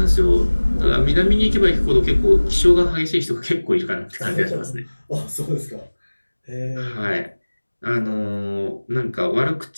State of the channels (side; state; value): both; inverted; correlation -1.00